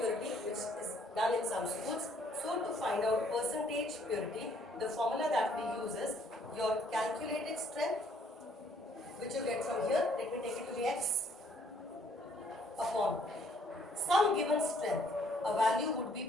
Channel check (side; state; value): both; normal; correlation 0.64